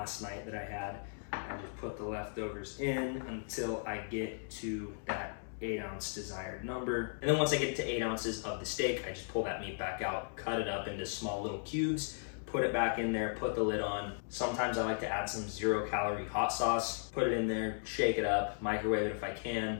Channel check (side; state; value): right; silent; digital silence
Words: night that I had. I just put the leftovers in until I get to that 8 ounce desired number. And then once I get to 8 ounces of the steak, I just pull that meat back out, cut it up into small little cubes, put it back in there, put the lid on. Sometimes I like to add some 0-calorie hot sauce, put it in there, shake it up, microwave it if I